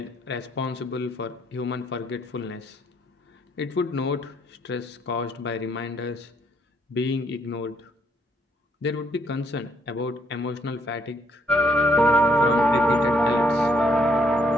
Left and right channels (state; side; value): normal; both; correlation 0.70